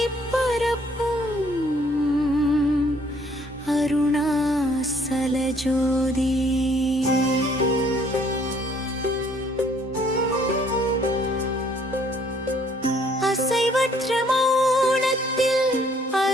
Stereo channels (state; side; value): normal; both; correlation 0.63